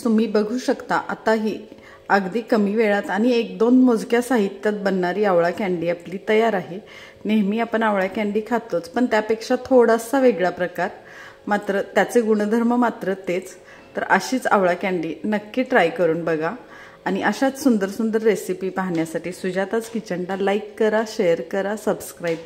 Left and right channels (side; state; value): both; identical; correlation 1.00